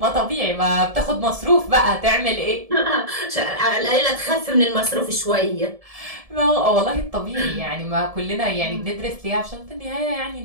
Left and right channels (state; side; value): late; left; 1.7 ms